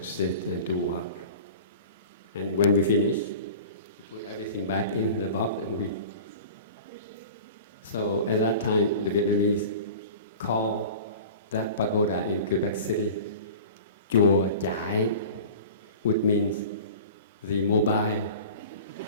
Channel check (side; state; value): both; inverted; correlation -0.39